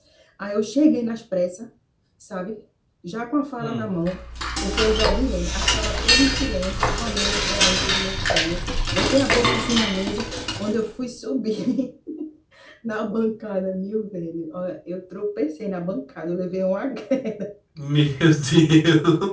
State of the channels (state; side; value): identical; both; correlation 1.00